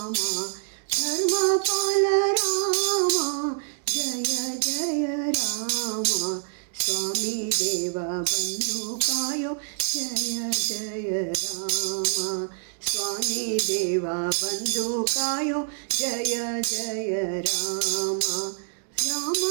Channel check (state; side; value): silent; left; digital silence